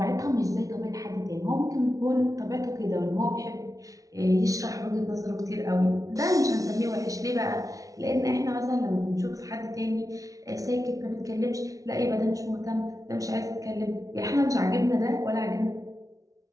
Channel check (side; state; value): left; late; 0.17 ms